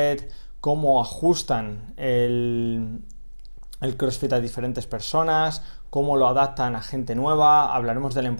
cómo ajustan el CrossFit a diferentes personas, cómo lo adaptan a gente nueva. Hablaremos de la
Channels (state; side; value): inverted; both; correlation -1.00